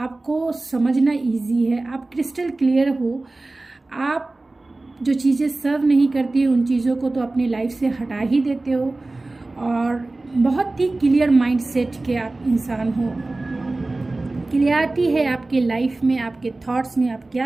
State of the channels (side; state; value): left; quieter; 3.1 dB